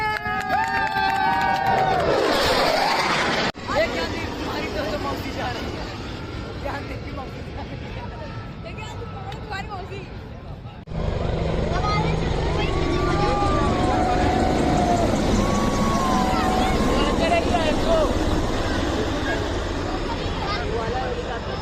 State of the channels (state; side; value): identical; both; correlation 1.00